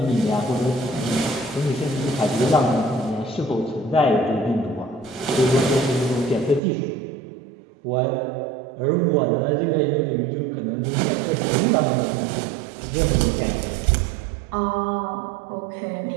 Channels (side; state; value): left; drops out; at 6.6 s